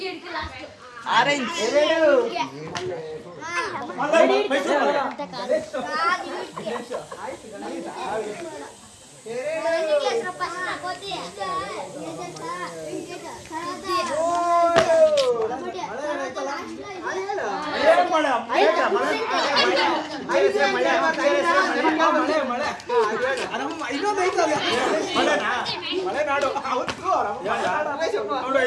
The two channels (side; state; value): both; identical; correlation 1.00